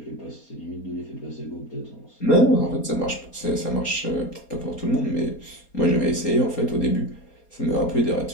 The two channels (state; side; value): late; right; 4.3 ms